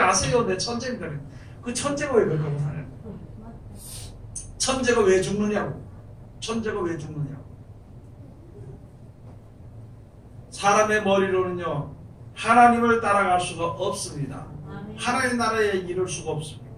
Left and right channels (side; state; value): both; identical; correlation 1.00